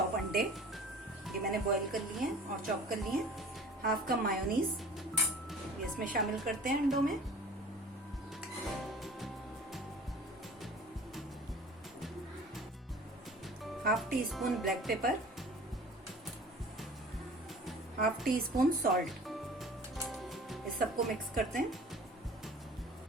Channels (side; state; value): both; normal; correlation 0.45